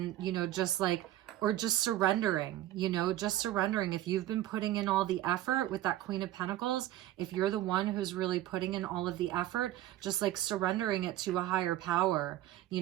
you know, just like, or just surrendering, you know, just surrendering. If you've been putting in all the effort with that Queen of Pentacles, if you're the one who's really putting in all of the effort, just like surrendering it to a higher power, you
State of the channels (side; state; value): left; quieter; 13.9 dB